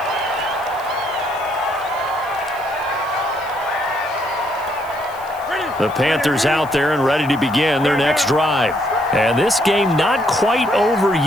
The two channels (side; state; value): left; noise; hiss, 23 dB below the sound